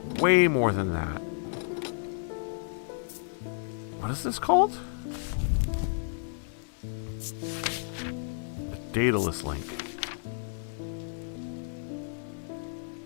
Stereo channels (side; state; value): right; silent; digital silence